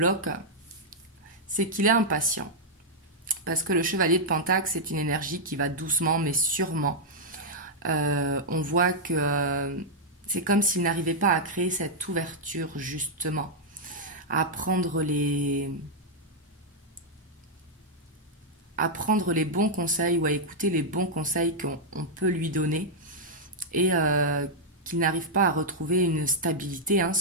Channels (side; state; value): both; normal; correlation -0.05